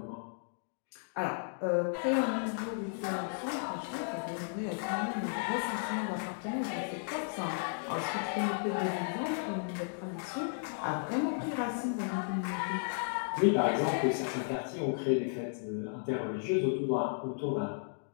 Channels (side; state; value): right; silent; digital silence